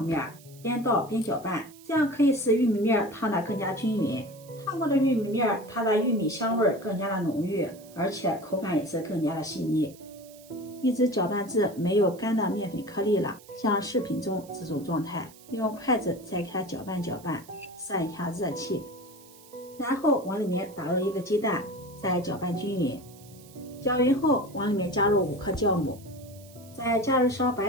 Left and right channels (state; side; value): noise; right; hiss, 23 dB below the sound